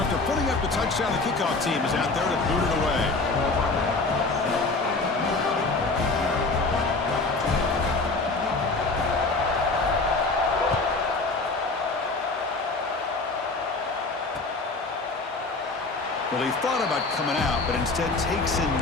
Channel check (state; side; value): quieter; right; 3.5 dB